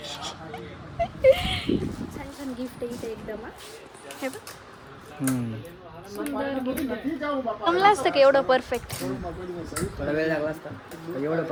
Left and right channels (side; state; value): both; identical; correlation 1.00